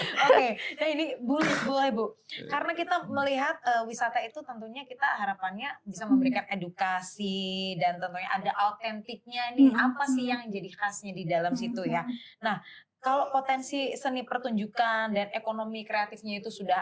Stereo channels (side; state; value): both; identical; correlation 1.00